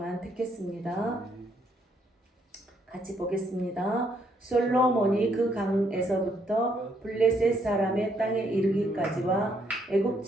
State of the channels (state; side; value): normal; both; correlation 0.72